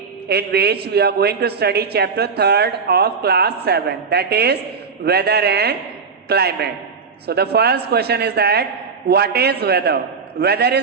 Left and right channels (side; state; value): left; quieter; 5.3 dB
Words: in which we are going to study chapter 3rd of class 7, that is weather and climate. So the first question is that what is weather? Weather